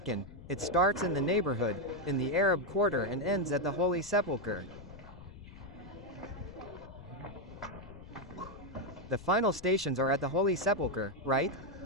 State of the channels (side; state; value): left; noise; rumble, 17 dB below the sound